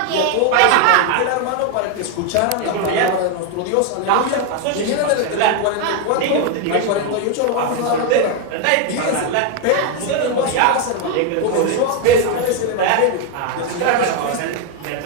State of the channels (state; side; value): different; both; correlation 0.01